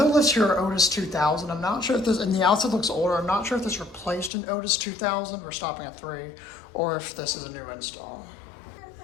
lifts here are Otis 2000. I'm not sure if this, and the outside looks older, I'm not sure if this replaced an Otis 2000, we're stopping at 3, or if this is a new install.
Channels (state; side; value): drops out; right; at 4.3 s